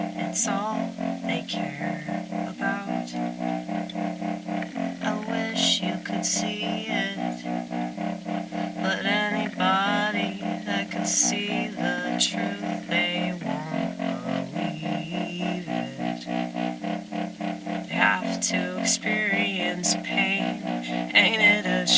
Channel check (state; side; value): identical; both; correlation 1.00